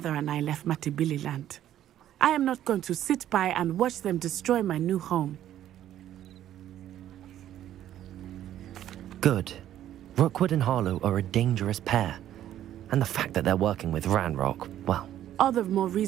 and I left Matibili land. I am not going to sit by and watch them destroy my new home. Good. Rookwood and Harlow are a dangerous pair. And the fact that they're working with Ranrock, well... All the more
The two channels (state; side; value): quieter; left; 11.8 dB